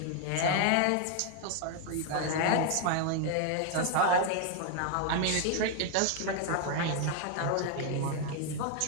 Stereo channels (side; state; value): both; different; correlation 0.00